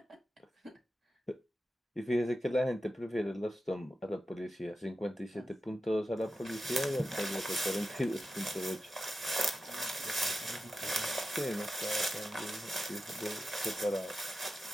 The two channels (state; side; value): normal; both; correlation 0.91